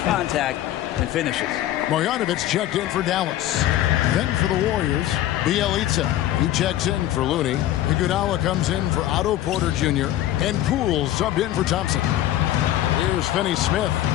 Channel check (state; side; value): quieter; right; 13.4 dB